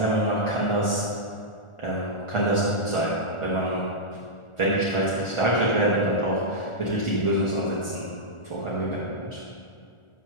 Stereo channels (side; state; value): right; late; 1.4 ms